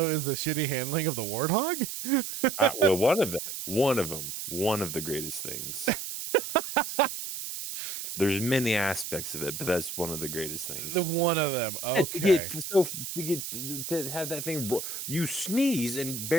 is the shitty handling of the warthog. Well, one of the greatest things. There's many aspects of it, but that's one of the greatest things. The one of them. Okay. To have that thing, you sneeze and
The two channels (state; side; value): noise; right; hiss, 6 dB below the sound